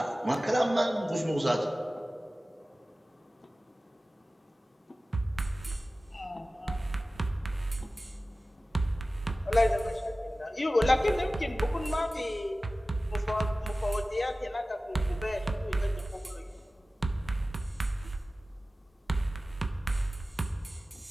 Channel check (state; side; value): normal; both; correlation 0.96